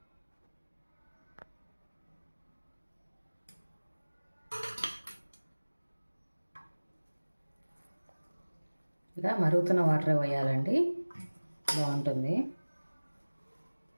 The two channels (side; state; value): both; inverted; correlation -1.00